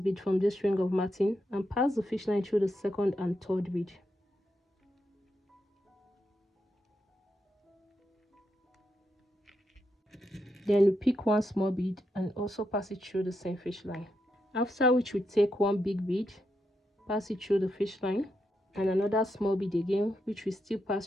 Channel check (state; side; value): normal; both; correlation 0.83